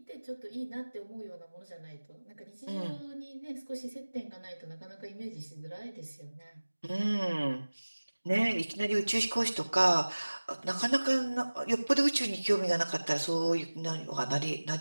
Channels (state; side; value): inverted; both; correlation -1.00